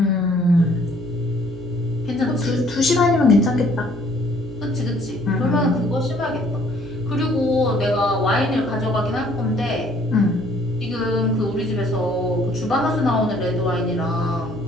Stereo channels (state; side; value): normal; both; correlation 0.60